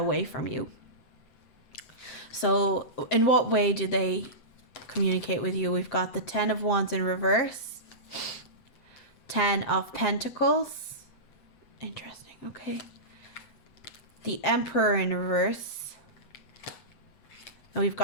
from you. So in what way do they communicate with you? We've got the 10 of Wands in reverse, 10 of Pentacles. Interesting. Okay. The Emperor in reverse. And we've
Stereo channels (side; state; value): right; late; 7.7 ms